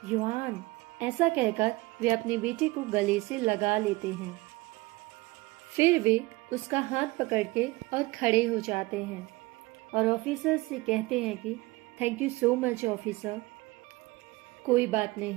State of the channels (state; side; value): quieter; left; 21.8 dB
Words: युआन, ऐसा कहकर वे अपने बेटे को गले से लगा लेते हैं। फिर वे उसका हाथ पकड़ के और खड़े हो जाते हैं और ऑफिसर से कहते हैं कि thank you so much officer. कोई बात